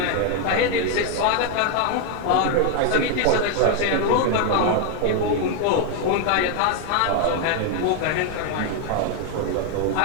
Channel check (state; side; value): different; both; correlation 0.01